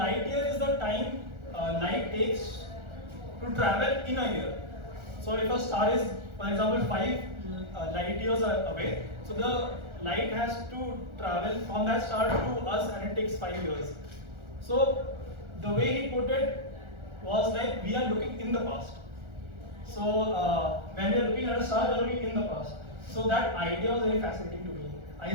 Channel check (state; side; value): late; left; 1.4 ms